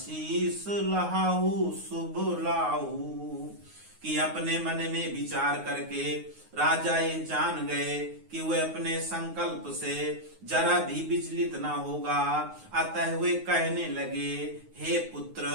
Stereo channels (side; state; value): left; late; 9.5 ms